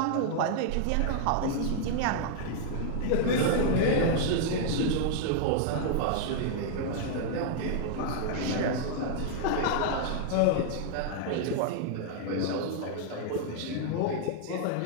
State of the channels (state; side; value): different; both; correlation 0.00